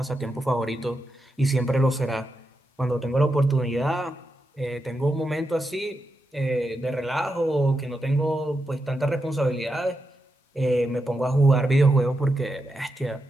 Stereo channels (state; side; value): normal; both; correlation 0.86